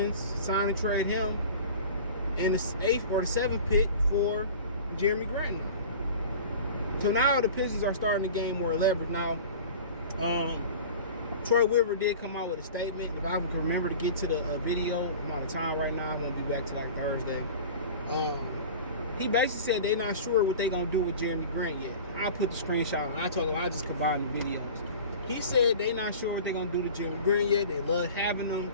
sign and trade him, and the 8th or the 7th pick for Jerami Grant now. So now the Pistons are starting to gain more leverage. Now, Troy Weaver did come out with a statement. If I can remember to get to the video, I'm out of time right now. I won't be back till like Thursday. He basically said they're not sure what they're going to do with Jerami Grant yet. I put the screenshot and I told him I just combined the videos. He said they're not sure what they're going to do to Jerami Grant yet. They love having him.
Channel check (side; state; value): both; inverted; correlation -0.39